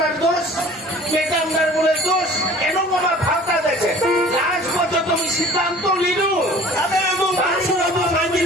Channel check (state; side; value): normal; both; correlation 0.47